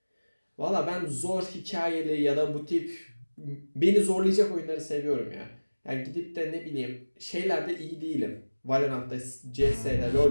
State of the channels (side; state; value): both; inverted; correlation -1.00